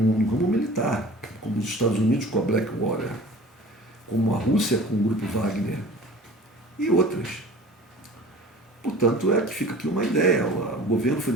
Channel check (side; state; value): both; normal; correlation 0.43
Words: ramo militar, como os Estados Unidos com a Blackwater, como a Rússia com o Grupo Wagner e outras. Portanto, que fica aqui uma ideia. O governo